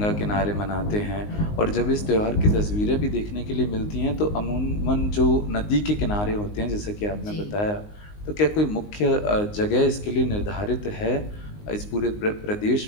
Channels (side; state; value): right; late; 19 ms